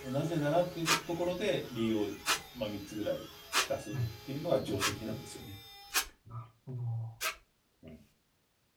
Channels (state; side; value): identical; both; correlation 1.00